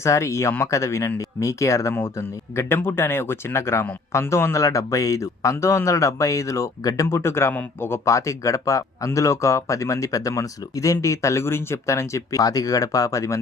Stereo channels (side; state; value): right; quieter; 3.9 dB